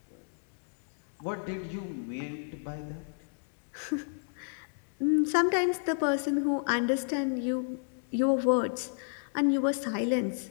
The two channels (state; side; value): silent; right; digital silence